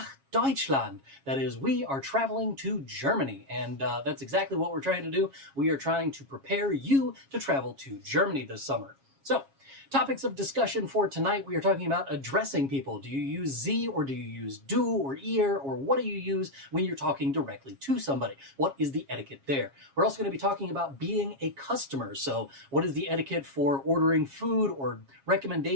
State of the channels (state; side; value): late; left; 7.3 ms